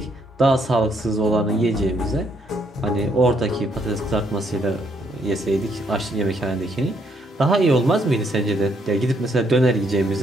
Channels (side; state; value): both; normal; correlation 0.72